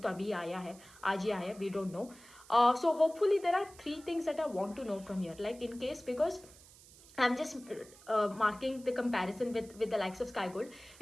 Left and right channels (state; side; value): noise; right; hiss, 22 dB below the sound